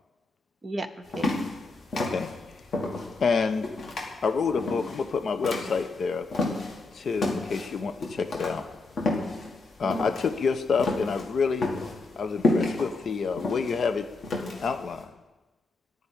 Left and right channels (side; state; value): right; quieter; 3.7 dB